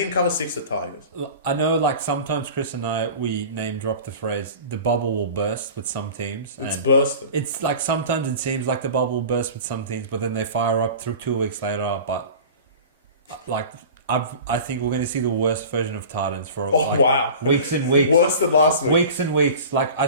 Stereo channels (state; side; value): inverted; both; correlation -0.38